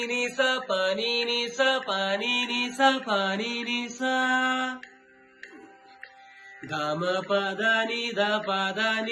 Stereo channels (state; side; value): identical; both; correlation 1.00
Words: निसा पानी निसा पानी निसा पानी निसा गाम पादा निदा पादा